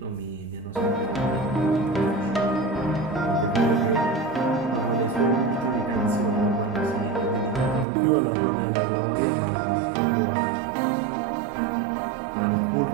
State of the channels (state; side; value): drops out; left; at 7.9 s